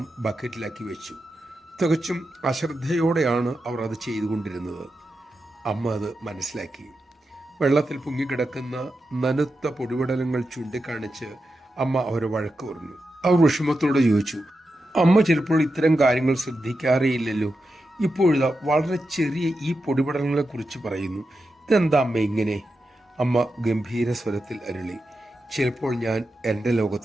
ബക്കറ്റിലാക്കി വെച്ചു. തികച്ചും അശ്രദ്ധയോടെയാണ് അവർ അത് ചെയ്തുകൊണ്ടിരുന്നത്. അമ്മ അത് മനസ്സിലാക്കി. വെള്ളത്തിൽ പൊങ്ങിക്കിടക്കുന്ന നനുത്ത പൊടിപടലങ്ങൾ ചൂണ്ടിക്കാണിച്ച് അമ്മ അവരെ വഴക്ക് പറഞ്ഞു. അവർ വിഷമത്തോടെ ചോദിച്ചു, അമ്മ ചിലപ്പോൾ ഇത്തരം കാര്യങ്ങൾ ശ്രദ്ധിക്കാറേയില്ലല്ലോ. ഇപ്പോഴിതാ വളരെ ചെറിയ ഈ പൊടിപടലങ്ങളെ കുറിച്ച് പറയുന്നു. ഇതെന്താ അമ്മ ഇങ്ങനെ? അമ്മ ഗംഭീര സ്വരത്തിൽ അരുളി, ചിലപ്പോൾ ഞാൻ എൻ്റെ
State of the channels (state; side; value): normal; both; correlation 0.89